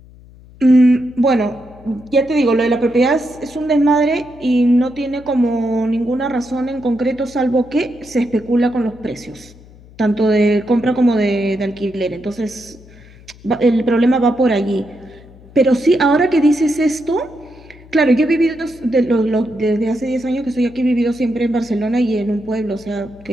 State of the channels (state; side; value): noise; left; hum, 23 dB below the sound